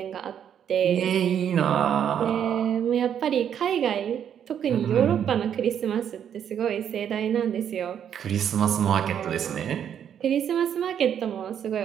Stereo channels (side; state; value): left; quieter; 8.9 dB